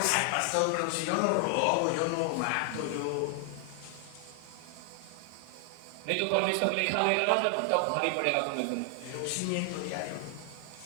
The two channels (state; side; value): different; both; correlation 0.00